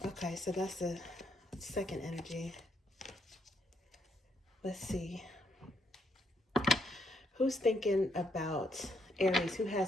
Okay, so that's the second energy. Let's see. Who's thinking about Aries? Who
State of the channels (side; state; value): both; normal; correlation 0.75